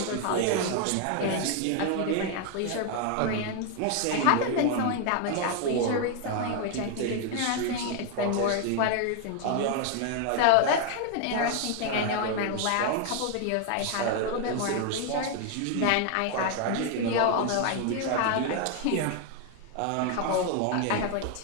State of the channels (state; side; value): different; both; correlation 0.01